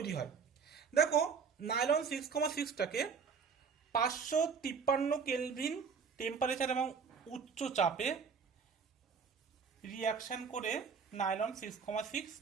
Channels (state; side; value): quieter; left; 6.0 dB